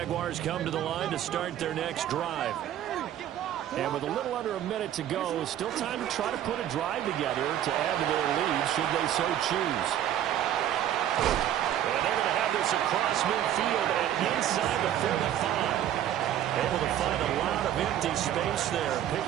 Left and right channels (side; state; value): left; quieter; 11.3 dB